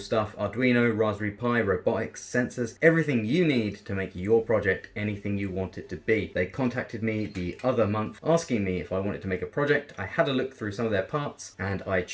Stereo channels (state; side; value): identical; both; correlation 1.00